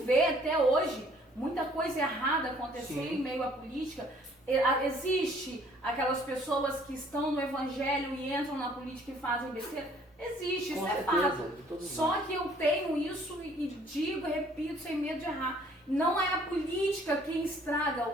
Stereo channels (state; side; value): normal; both; correlation 0.59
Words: até hoje muita coisa errada acontecer Sim. em meio à política, Existe aquelas pessoas que estão no evangelho e entram na política e fazem besteira? Existe, isso é fato. Só que eu tenho isso e digo, repito, sem medo de errar. Não é a política quem estraga